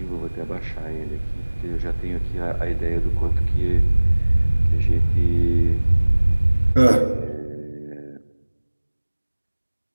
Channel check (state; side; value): inverted; both; correlation -1.00